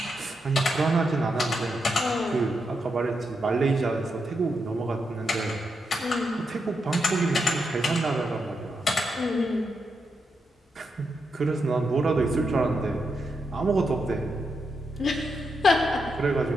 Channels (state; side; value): normal; both; correlation 0.83